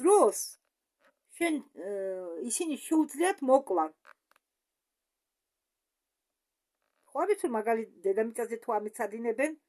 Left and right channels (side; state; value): both; identical; correlation 1.00